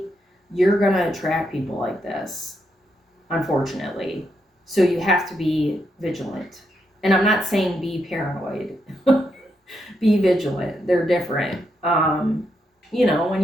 you're gonna attract people like this, unfortunately. So you have to be vigilant. And I'm not saying be paranoid. Be vigilant. They're different. When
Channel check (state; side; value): normal; both; correlation 0.81